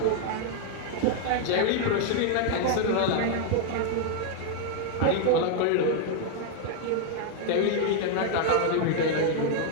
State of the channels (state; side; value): different; both; correlation 0.00